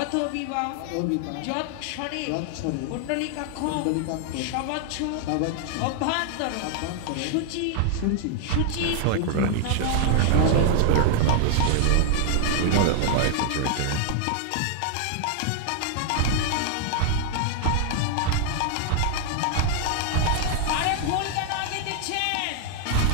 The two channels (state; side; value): different; both; correlation 0.00